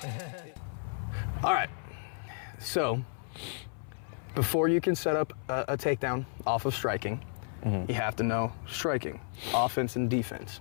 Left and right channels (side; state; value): right; silent; 56 dB below the other